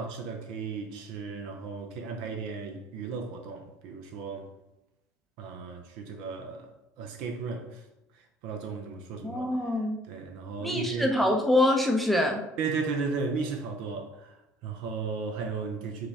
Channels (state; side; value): normal; both; correlation 0.60